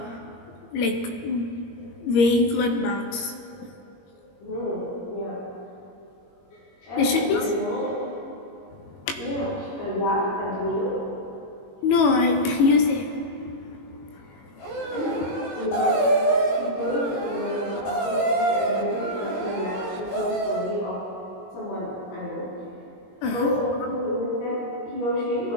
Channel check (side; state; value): right; late; 21 ms